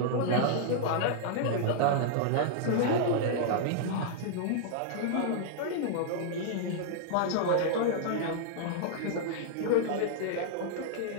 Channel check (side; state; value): both; different; correlation -0.01